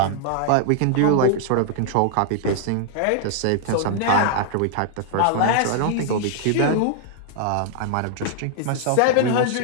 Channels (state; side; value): different; both; correlation -0.01